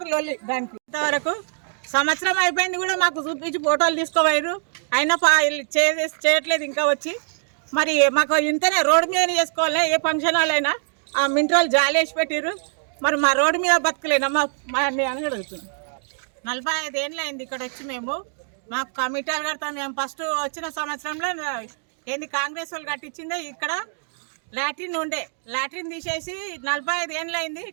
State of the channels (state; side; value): silent; left; digital silence